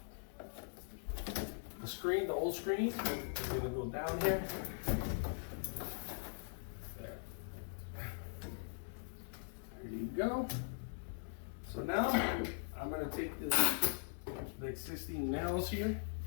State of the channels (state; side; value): silent; right; digital silence